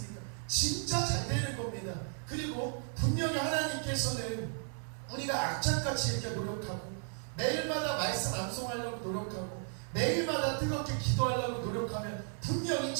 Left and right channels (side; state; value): left; silent; 55 dB below the other